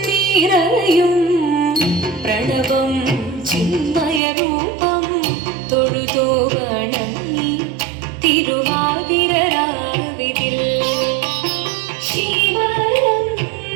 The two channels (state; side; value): drops out; left; at 4.2 s